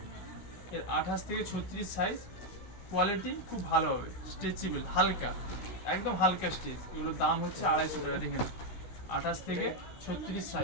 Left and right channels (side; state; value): right; late; 16 ms